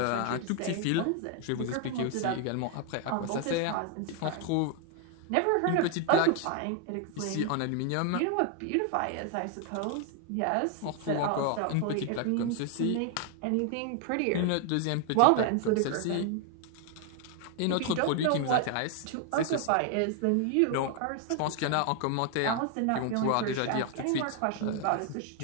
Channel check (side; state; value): both; different; correlation 0.00